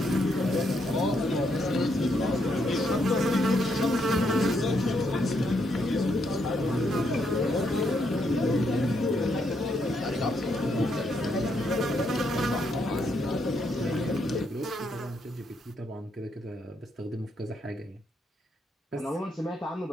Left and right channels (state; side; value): normal; both; correlation 0.76